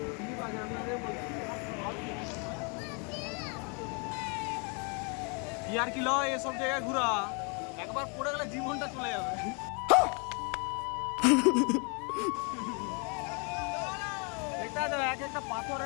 স্লিপ আছে, আমি আগে বলছি। ইয়ার কি লয় এসব জায়গায় ঘোরা, একবার পড়ে গেলে জীবনটা চলে যাবে। দেখতে হবে এক একটা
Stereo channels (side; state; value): right; quieter; 34.7 dB